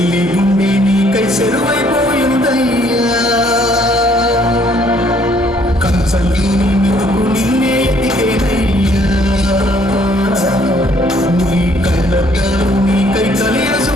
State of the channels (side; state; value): both; normal; correlation 0.64